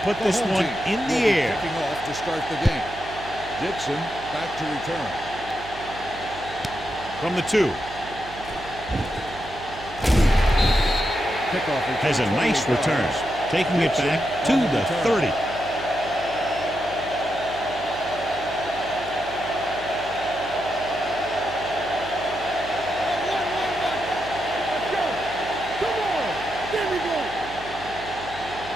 put this one in the air. Kicking off to start the game. Dixon back to return. From the 2. Kickoff Has a nice return, taking it back to the 30.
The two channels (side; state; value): right; noise; hum, 16 dB below the sound